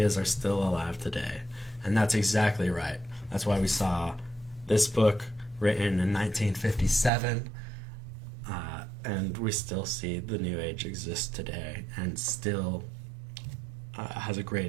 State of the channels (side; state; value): left; drops out; at 7.1 s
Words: are still alive today. And that's exactly right. That's why we saw this book written in 1957, and we still see the New Age exist today and still has a